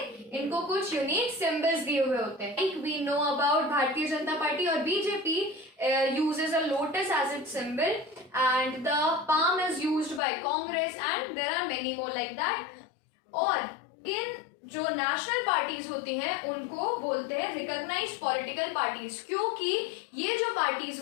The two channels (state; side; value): drops out; right; at 10.2 s